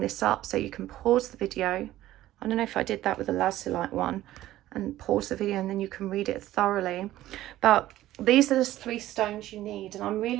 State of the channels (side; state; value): left; quieter; 14.7 dB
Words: this up so you can pause the video. I don't know if I did that with the Lazulite one, and pause the video and then you can read it thoroughly. But these are the three stones you need. And I'm